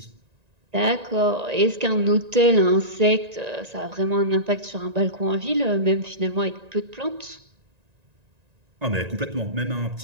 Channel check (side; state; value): left; late; 1.9 ms